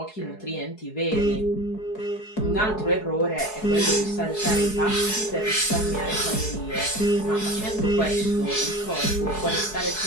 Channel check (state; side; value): late; right; 4.7 ms